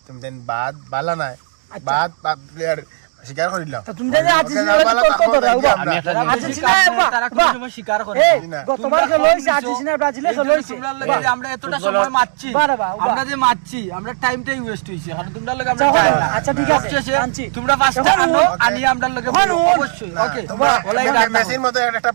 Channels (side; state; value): left; silent; digital silence